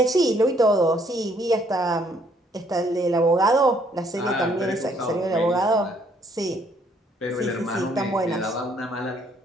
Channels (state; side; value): normal; both; correlation 0.66